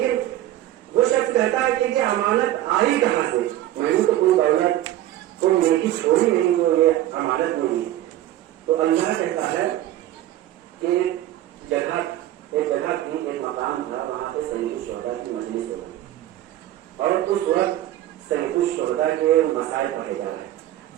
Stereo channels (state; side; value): quieter; left; 13.7 dB